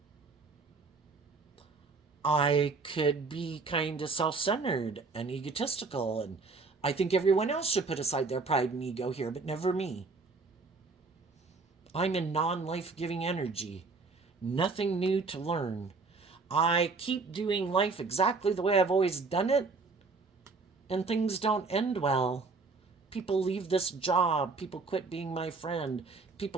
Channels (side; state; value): left; quieter; 4.2 dB